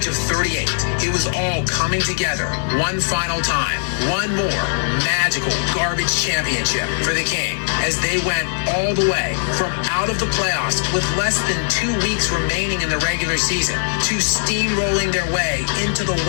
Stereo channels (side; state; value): right; silent; digital silence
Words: of 38, it was all coming together one final time, one more magical garbage championship for the King, as they went all the way from out of the playoffs with less than 2 weeks remaining in the regular season to steamrolling their way into the